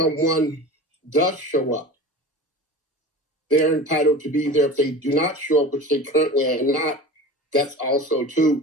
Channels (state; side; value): normal; both; correlation 0.35